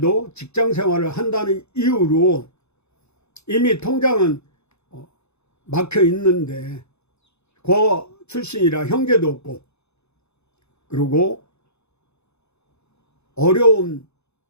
직장생활을 한다는 이유로 이미 통장은 막혀 있는데 고 출신이라 형제도 없고 그리고 어려운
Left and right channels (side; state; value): right; late; 0.80 ms